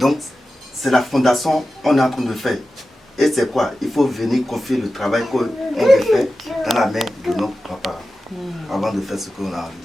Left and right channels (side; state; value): both; normal; correlation 0.93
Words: c'est la fondation qu'on est en train de faire. Et c'est quoi? Il faut venir confier le travail qu'on veut faire dans la main de nos papas avant de faire ce qu'on a envie de